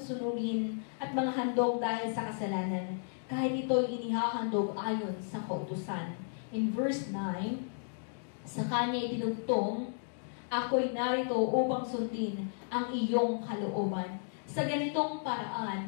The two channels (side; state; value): right; silent; digital silence